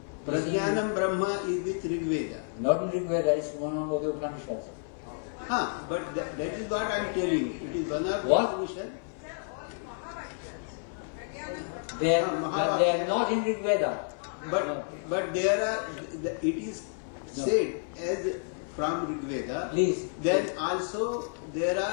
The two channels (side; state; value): right; silent; 58 dB below the other